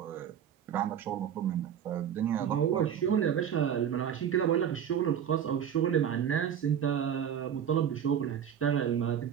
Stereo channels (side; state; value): left; quieter; 8.9 dB